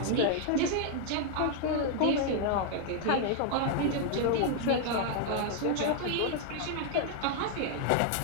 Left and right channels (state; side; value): different; both; correlation 0.00